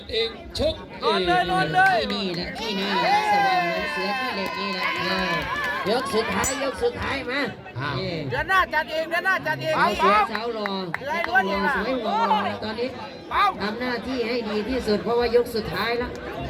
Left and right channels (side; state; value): both; identical; correlation 1.00